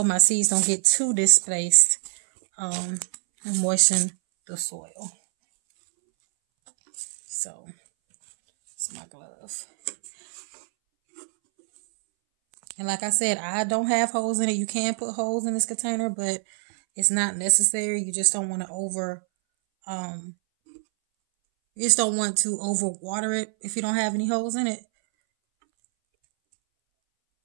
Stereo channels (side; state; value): left; silent; 62 dB below the other